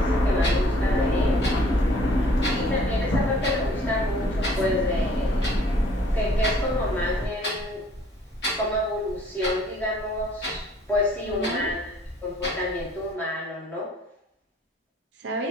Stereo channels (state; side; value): normal; both; correlation 0.58